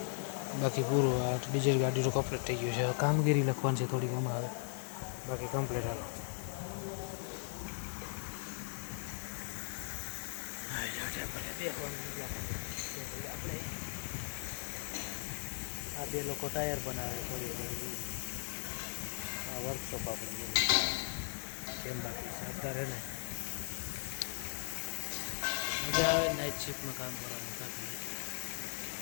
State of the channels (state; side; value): silent; right; digital silence